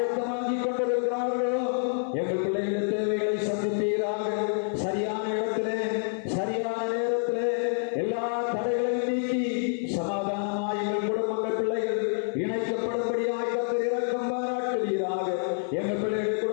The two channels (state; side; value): silent; right; 60 dB below the other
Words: கொண்டிருக்கிறார்களோ எங்கள் பிள்ளைகளுடைய தேவைகளை சந்திப்பீராக. சரியான இடத்திலே சரியான நேரத்திலே எல்லா தடைகளையும் நீக்கி சமாதானமாய் எங்கள் குடும்பங்கள் பிள்ளைகள் இணைக்கப்படும்படியாக கர்த்தர் இரக்கம் பாராட்டுவீராக. எங்கள் பிள்ளைகளுடைய